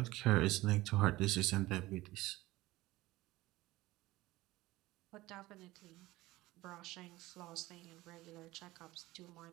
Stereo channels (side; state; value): left; quieter; 18.5 dB